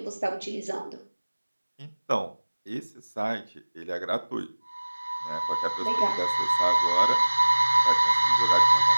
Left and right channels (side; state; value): both; inverted; correlation -1.00